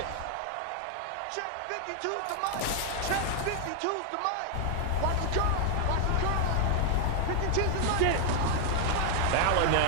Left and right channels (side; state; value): both; different; correlation 0.00